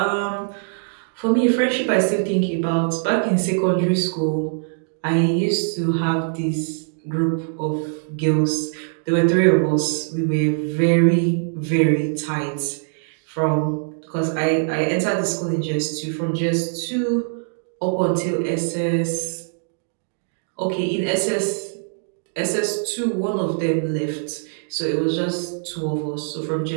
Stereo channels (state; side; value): silent; left; digital silence